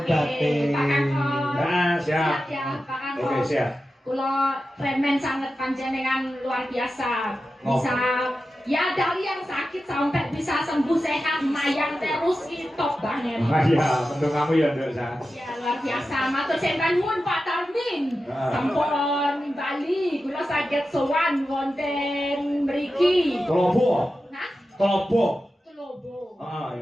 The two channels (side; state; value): both; normal; correlation 0.92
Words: batin. Pak Kakon. Nah, siap. Ya, Pak Kakon. Oke, siap. Kula remen sangat panjenengan luar biasa. Oh. Bisa ya dari yang sakit sampai bisa sembuh sehat mayang terus top banget. Ah iya, mendung kamu ya, Nduk. Ya luar biasa. Matur sembah nuwun Pak Tarmin. Ah. Sampun Bali kula saged sowan wonten mriki. Kelopo. Nah, Kelopo. Telobo. Ah